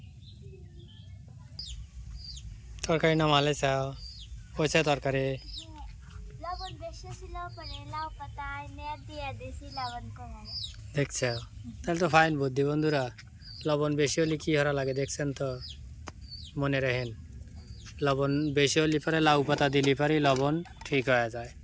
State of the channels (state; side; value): identical; both; correlation 1.00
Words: তরকারি নামালে চাও হয়েছে তরকারি। লবণ বেশি ছিল পরে লাউ পাতায় নেট দিয়ে দিয়েছি লবণ কমে গেছে। দেখছ তাহলে তো ফাইন বুদ্ধি বন্ধুরা। লবণ বেশি হলে কি হরা লাগে দেখছেন তো, মনে রাখেন। লবণ বেশি হলে পরে লাউ পাতা দিলে পরে লবণ ঠিক হয়ে যায়,